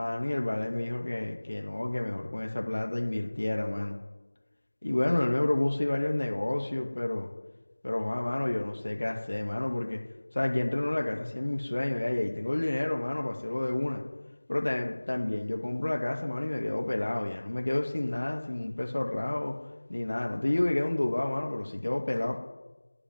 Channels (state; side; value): inverted; both; correlation -1.00